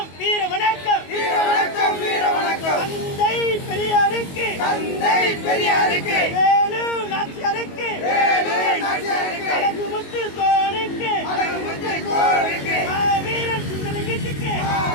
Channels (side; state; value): right; late; 22 ms